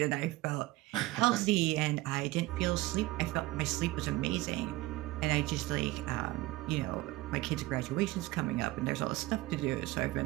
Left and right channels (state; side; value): quieter; left; 18.7 dB